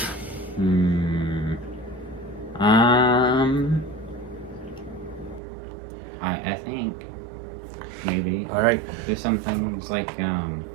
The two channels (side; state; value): left; drops out; at 5.4 s